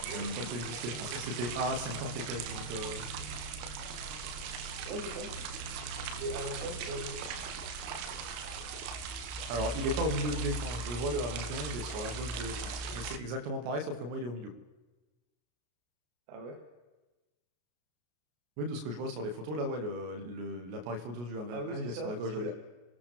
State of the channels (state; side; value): late; left; 33 ms